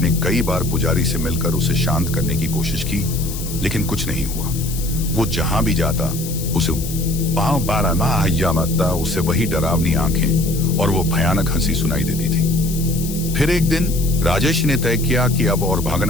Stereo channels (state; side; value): noise; left; hiss, 10 dB below the sound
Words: कई बार पुजारी से मिलकर उसे शांत करने की कोशिश की, लेकिन कुछ नहीं हुआ। वो जहां भी जाता उसे वही डरावनी आंखें और वो भयानक हंसी सुनाई देती थी। फिर एक दिन राजेश ने तय किया कि अब और